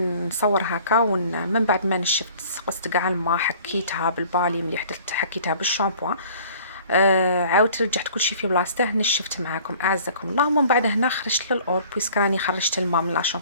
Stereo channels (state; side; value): inverted; both; correlation -0.51